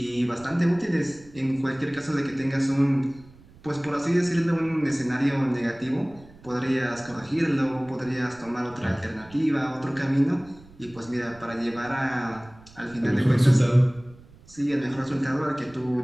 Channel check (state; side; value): noise; right; rumble, 23 dB below the sound